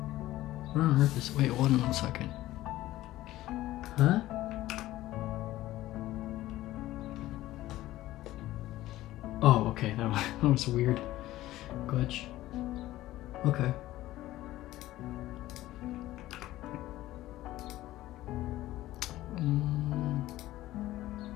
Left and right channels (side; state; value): right; quieter; 15.7 dB